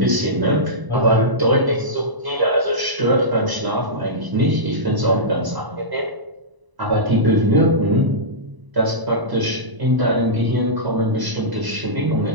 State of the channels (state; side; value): late; left; 1.0 ms